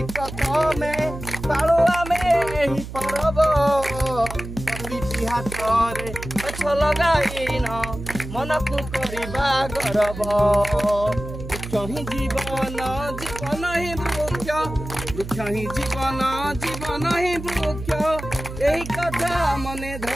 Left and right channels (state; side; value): noise; right; hum, 10 dB below the sound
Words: प्रथमे पाळु आमे एही परब। प्रति हातरे गछ लगाइन मनकु करिबा गर्व। वृक्ष ही जीवन जीवन ही वृक्ष वृक्ष ही जीवन जीवन ही वृक्ष यही कथा मने